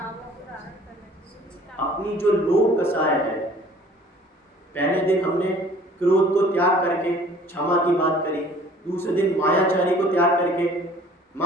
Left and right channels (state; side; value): normal; both; correlation 0.52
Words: अपनी जो लोभ कसाय है। पहले दिन हमने क्रोध को त्याग करके क्षमा की बात करी, दूसरे दिन मायाचारी को त्याग करके,